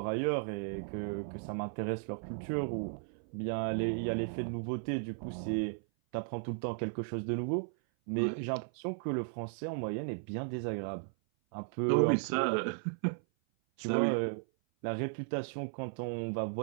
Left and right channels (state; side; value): silent; left; 54 dB below the other